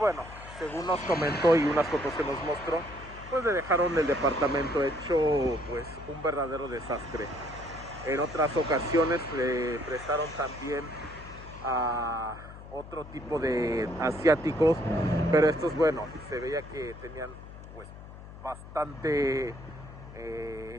según nos comentó y unas fotos que nos mostró, pues le dejaron el departamento hecho pues un verdadero desastre. En otras ocasiones le prestaron también a otro tipo de asiáticos, pero estos, bueno, se veía que tenían pues bastante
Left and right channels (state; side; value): noise; left; hum, 15 dB below the sound